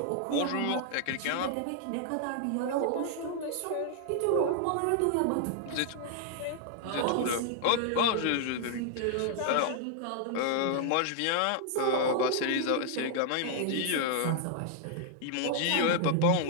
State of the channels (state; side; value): different; both; correlation 0.00